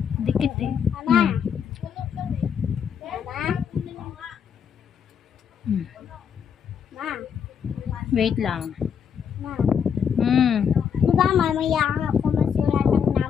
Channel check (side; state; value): right; quieter; 7.4 dB